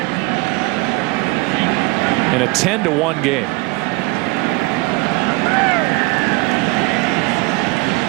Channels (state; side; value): quieter; left; 24.2 dB